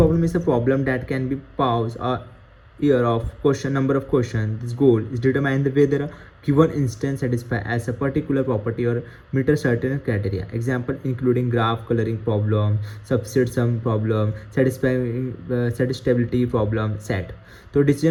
is a problem that can be pause year of question number of questions. This goal is determine whether a given instance satisfy as a particular property or meet a certain criteria. Example including graph coloring problem, subset sum problem, satisfiability problem, set. तो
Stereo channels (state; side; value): identical; both; correlation 1.00